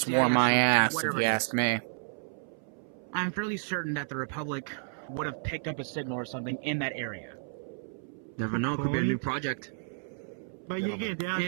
war my CIS, or ass, if whatever you it ask is, me. I'm fairly certain that the Republic would have picked up a signal or something in that area. Never know. Could be a new Point. project. But again, they are And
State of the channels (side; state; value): left; silent; 57 dB below the other